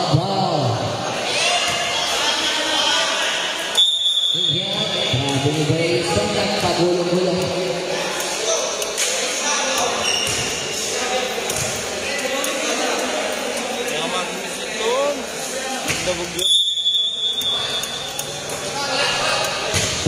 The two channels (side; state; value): both; identical; correlation 1.00